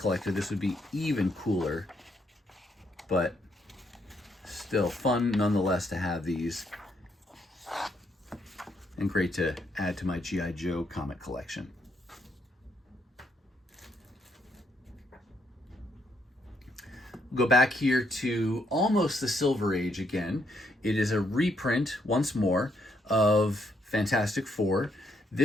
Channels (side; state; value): both; normal; correlation 0.75